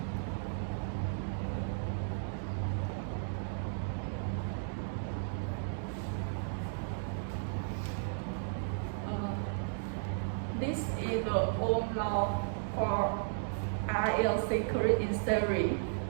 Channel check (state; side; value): silent; left; digital silence